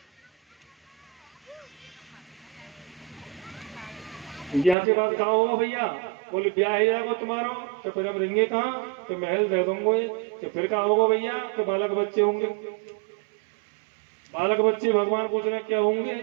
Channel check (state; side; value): drops out; left; at 4.8 s